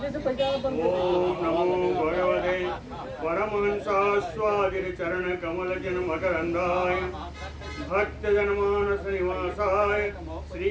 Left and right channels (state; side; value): identical; both; correlation 1.00